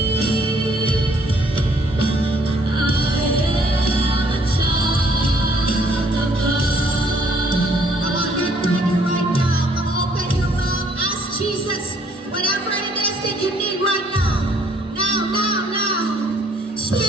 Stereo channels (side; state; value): both; normal; correlation 0.64